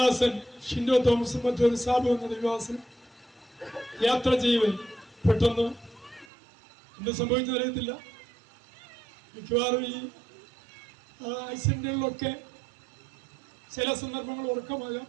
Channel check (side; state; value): left; drops out; at 6.2 s